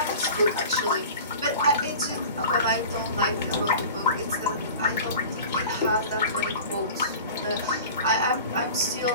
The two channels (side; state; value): both; inverted; correlation -0.38